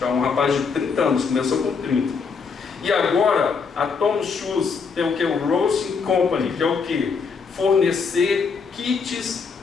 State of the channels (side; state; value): right; quieter; 5.3 dB